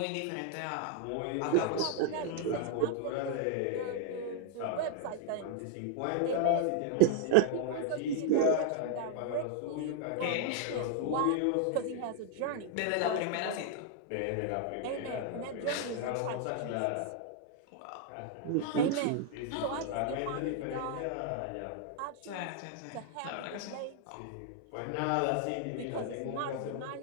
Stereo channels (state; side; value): different; both; correlation -0.01